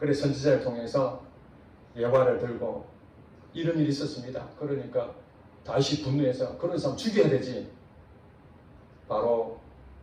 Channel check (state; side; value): identical; both; correlation 1.00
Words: 선지자를 통해서 예화를 들고 이런 일이 있었습니다. 그러니까 다시 분노해서 그런 사람 죽여야 되지. 바로